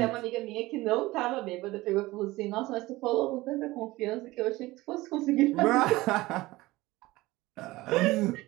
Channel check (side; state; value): left; quieter; 19.4 dB